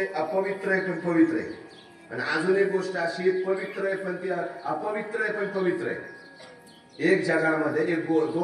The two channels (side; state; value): both; identical; correlation 1.00